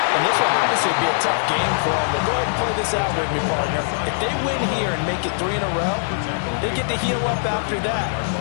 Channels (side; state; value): right; silent; digital silence